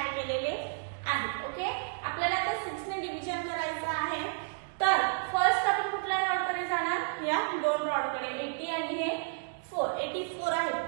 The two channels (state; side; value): silent; left; digital silence